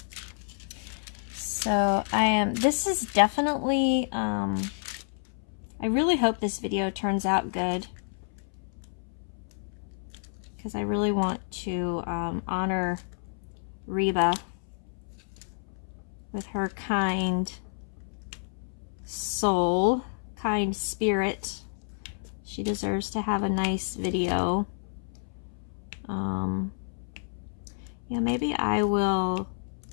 So this is definitely, I really hope this video turns out good, because I really want to honor Reba with her kind soul, kind spirit. She deserves to have a nice video. Yeah, maybe I will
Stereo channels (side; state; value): right; silent; 58 dB below the other